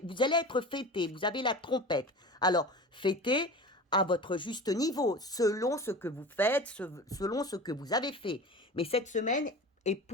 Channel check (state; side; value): normal; both; correlation 0.34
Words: être fêté, vous avez la trompette. Alors, fêtez à votre juste niveau, selon ce que vous faites, selon ce que vous avez fait. Mais cette semaine est